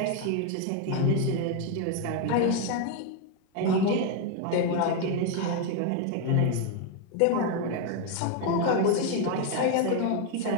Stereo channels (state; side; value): different; both; correlation 0.01